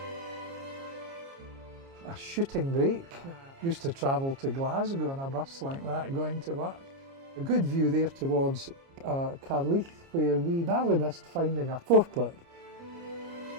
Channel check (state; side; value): late; left; 29 ms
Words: A shooting break. Used to travel to Glasgow on a bus like that going to work. A good view there towards Carleath, where we narrowly missed finding a forklift.